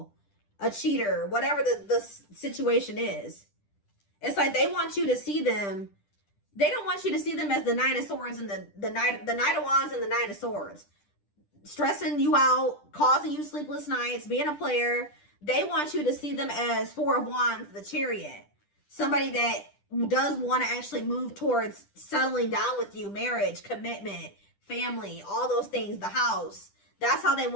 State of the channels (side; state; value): right; late; 10 ms